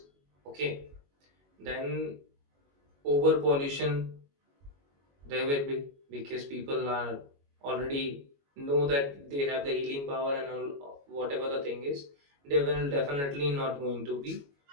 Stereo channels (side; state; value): left; late; 21 ms